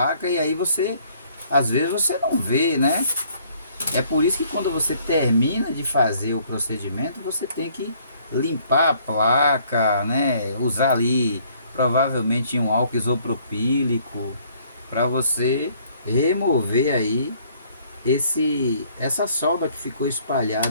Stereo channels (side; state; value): both; inverted; correlation -0.62